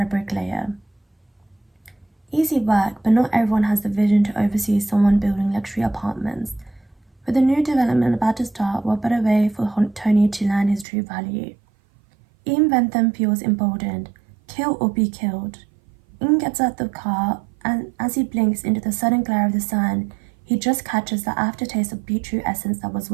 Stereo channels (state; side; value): drops out; left; at 10.9 s